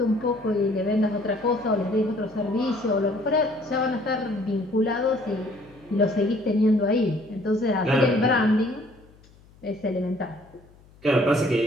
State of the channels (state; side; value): noise; left; hum, 27 dB below the sound